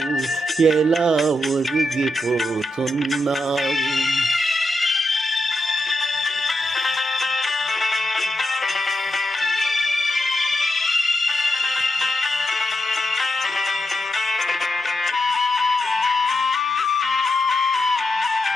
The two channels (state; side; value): normal; both; correlation 0.86